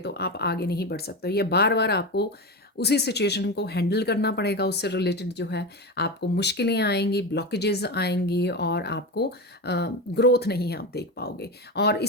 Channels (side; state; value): both; normal; correlation 0.20